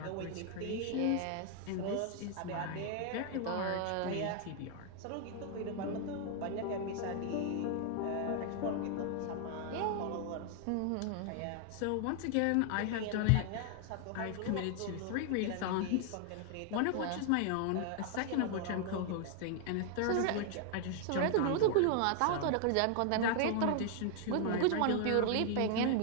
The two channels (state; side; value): different; both; correlation 0.00